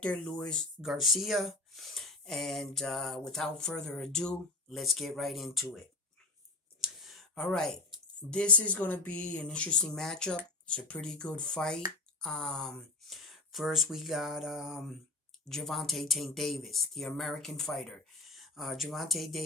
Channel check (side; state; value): right; quieter; 3.1 dB